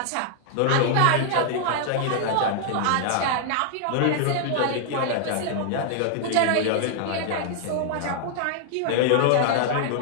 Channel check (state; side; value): different; both; correlation 0.00